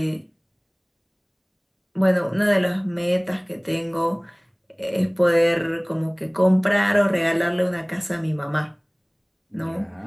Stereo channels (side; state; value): both; identical; correlation 1.00